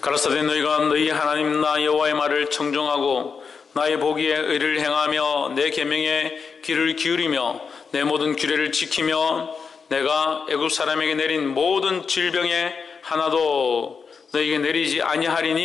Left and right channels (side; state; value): right; quieter; 5.6 dB